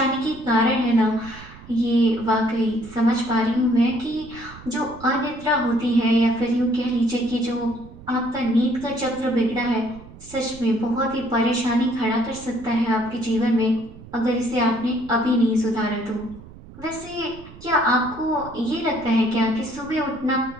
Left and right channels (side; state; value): right; noise; rumble, 18 dB below the sound